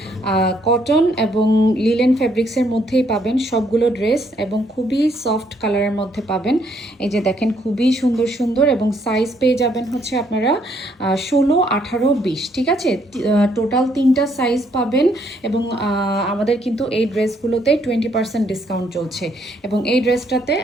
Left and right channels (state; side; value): normal; both; correlation 0.70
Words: কটন এবং লিলেন ফ্যাব্রিক্সের মধ্যেই পাবেন সবগুলো ড্রেস, এবং খুবই সফট কালারের মধ্যে পাবেন। এই যে দেখেন, খুবই সুন্দর সুন্দর, এবং সাইজ পেয়ে যাবেন হচ্ছে আপনারা 16, 18, 20। ঠিক আছে, টোটাল 3টা সাইজ পাবেন। এবং আমাদের কিন্তু এই ড্রেসগুলোতে 20% ডিসকাউন্ট চলছে, এবং এই ড্রেসটাতে